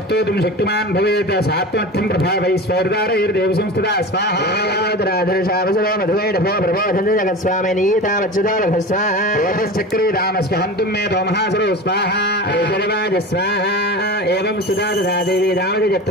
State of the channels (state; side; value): normal; both; correlation 0.31